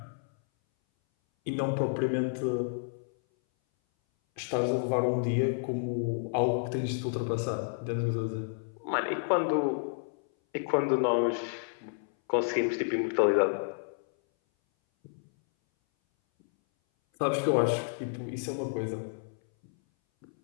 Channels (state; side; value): silent; right; 58 dB below the other